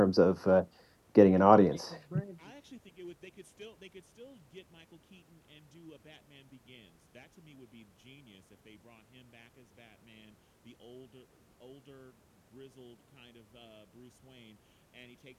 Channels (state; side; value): identical; both; correlation 1.00